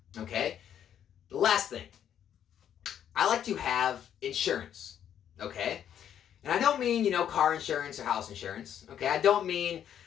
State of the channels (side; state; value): right; quieter; 9.6 dB